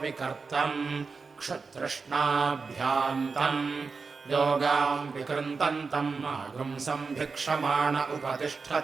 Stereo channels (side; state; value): left; quieter; 4.7 dB